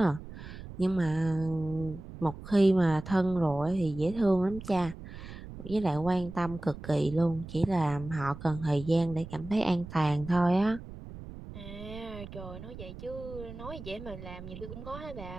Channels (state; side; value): noise; right; rumble, 13 dB below the sound